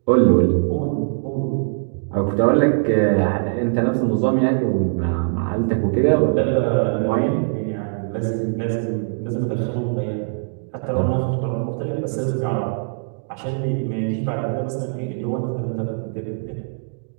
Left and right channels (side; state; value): left; silent; digital silence